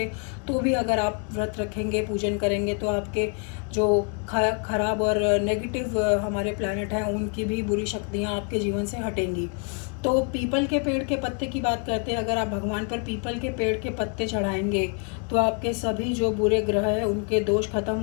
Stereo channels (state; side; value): quieter; right; 39.0 dB